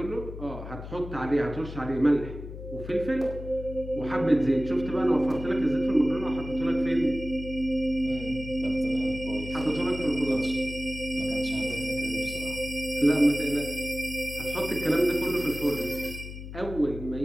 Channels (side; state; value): left; noise; hum, 10 dB below the sound